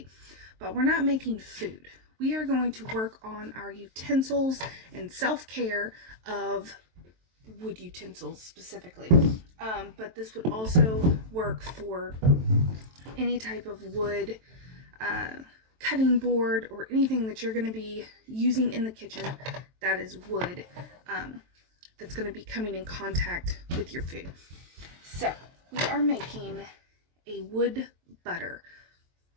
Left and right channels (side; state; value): left; late; 23 ms